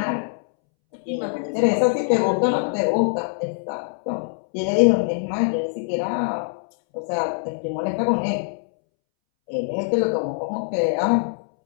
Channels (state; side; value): silent; right; 63 dB below the other